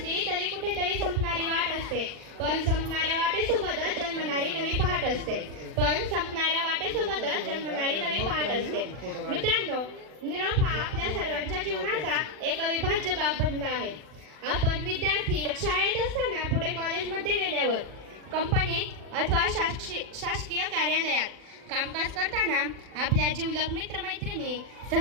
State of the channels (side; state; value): left; late; 40 ms